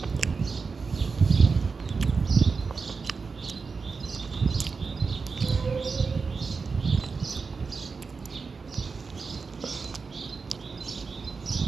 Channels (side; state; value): left; quieter; 4.8 dB